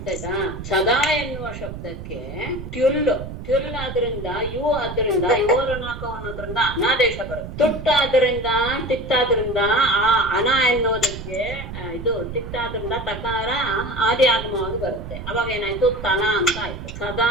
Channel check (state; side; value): noise; right; rumble, 9 dB below the sound